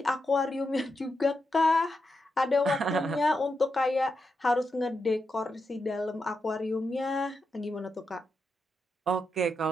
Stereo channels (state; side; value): normal; both; correlation 0.85